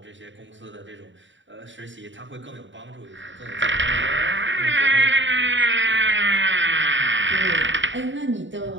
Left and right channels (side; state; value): left; late; 0.54 ms